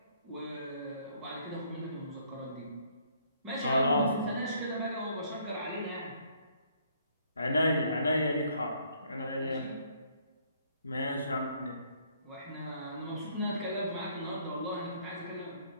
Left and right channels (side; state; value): both; inverted; correlation -0.64